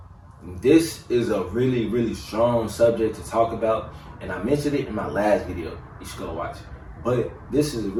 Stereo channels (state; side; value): identical; both; correlation 1.00